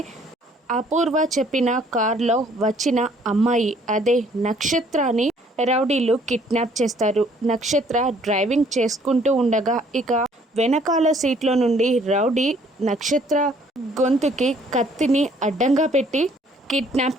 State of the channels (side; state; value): both; normal; correlation 0.61